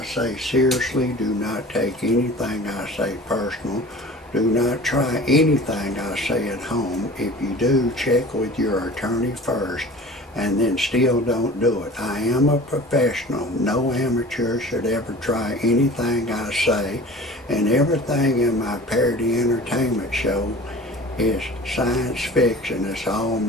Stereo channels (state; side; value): normal; both; correlation 0.41